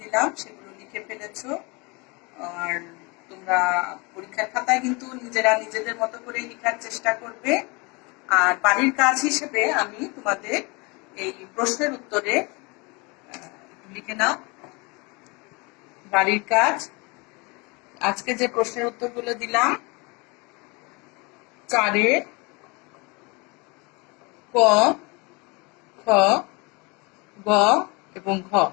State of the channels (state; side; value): quieter; right; 28.0 dB